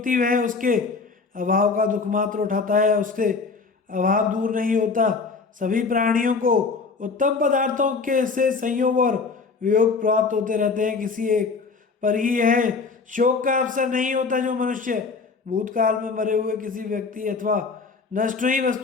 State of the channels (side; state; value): right; quieter; 4.6 dB